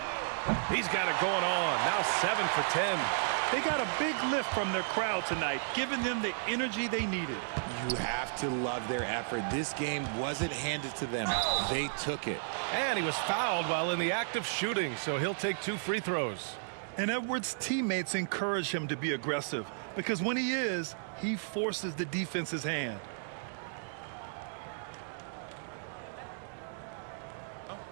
He's got it going on. Now 7 for 10. They got a big lift from their crowd tonight, giving them the energy they needed. You have to love their effort. This game wasn't handed to them. They took it. And he was fouled while in the act of shooting, so he'll take 2 free throws. And Edwards' teammates encourage him to be aggressive because when he is, he forces the defense's hand.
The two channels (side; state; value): left; silent; digital silence